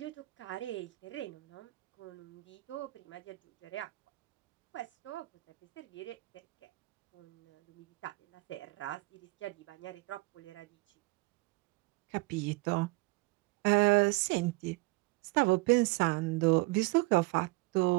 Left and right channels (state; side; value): quieter; left; 23.4 dB